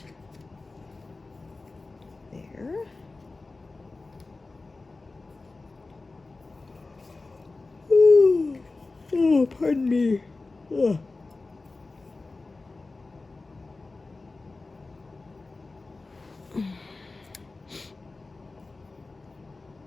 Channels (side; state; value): right; quieter; 3.5 dB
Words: There. Oh, pardon me. Ugh.